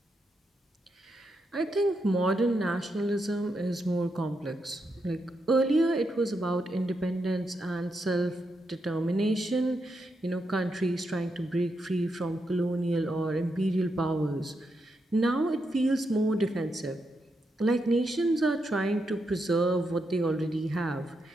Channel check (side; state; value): both; normal; correlation 0.83